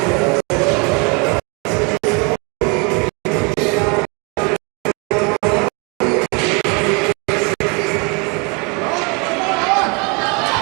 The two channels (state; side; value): quieter; left; 31.6 dB